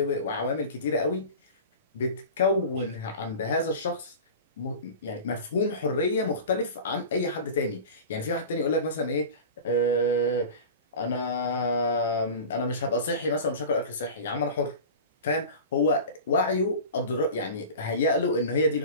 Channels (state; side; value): inverted; both; correlation -0.34